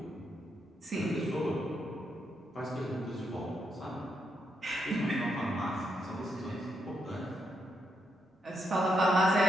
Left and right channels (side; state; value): both; normal; correlation 0.80